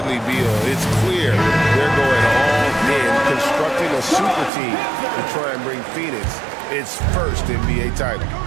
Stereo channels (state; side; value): drops out; left; at 4.5 s